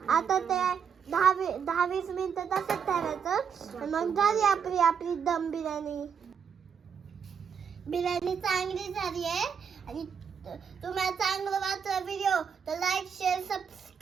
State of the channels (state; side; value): quieter; left; 7.0 dB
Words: आता ते 10-20 मिनिटं तसंच ठेवायचं. मग झाली आपली दम बिर्याणी. बिर्याणी चांगली झाली आहे. आणि तुम्हाला चांगलं वाटलं व्हिडिओ तर लाईक शेअर